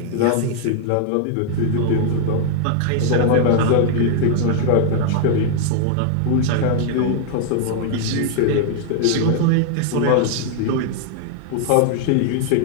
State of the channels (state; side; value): different; both; correlation 0.00